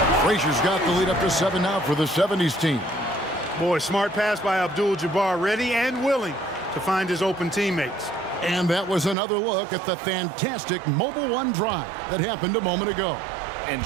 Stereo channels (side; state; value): left; drops out; at 9.2 s